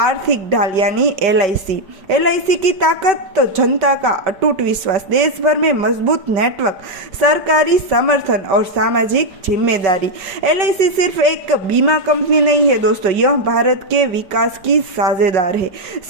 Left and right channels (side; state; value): left; late; 5.3 ms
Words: ढाल यानी LIC की ताकत तो जनता का अटूट विश्वास, देश भर में मजबूत नेटवर्क, सरकारी समर्थन और सामाजिक जिम्मेदारी। LIC सिर्फ एक बीमा कंपनी नहीं है दोस्तों, यह भारत के विकास की साझेदार है,